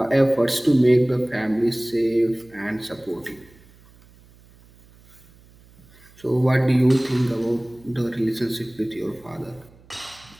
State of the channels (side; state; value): right; noise; hum, 27 dB below the sound